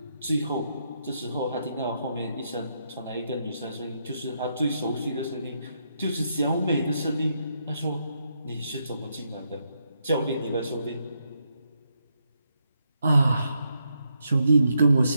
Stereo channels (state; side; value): inverted; both; correlation -0.80